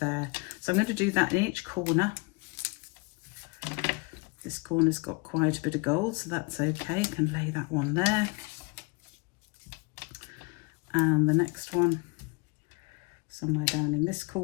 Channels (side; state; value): right; quieter; 28.3 dB